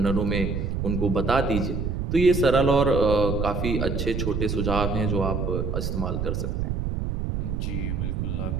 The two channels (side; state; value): right; noise; rumble, 1 dB below the sound